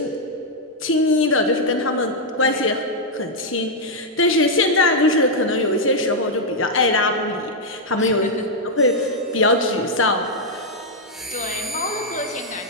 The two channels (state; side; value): normal; both; correlation -0.03